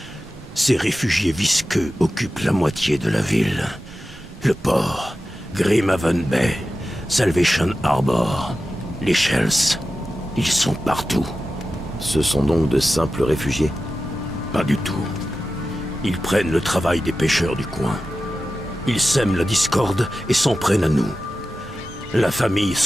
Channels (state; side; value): normal; both; correlation 0.93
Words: ces réfugiés visqueux occupent la moitié de la ville. Le port, Grimhaven Bay, Salvation Harbor, les Shells, ils sont partout. Ce sont donc de simples réfugiés? Pas du tout. Ils prennent le travail des pêcheurs du coin. Ils sèment la discorde et s'en prennent à nous. La famille